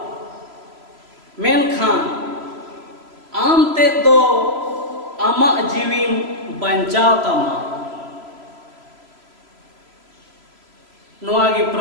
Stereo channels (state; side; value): late; left; 3.0 ms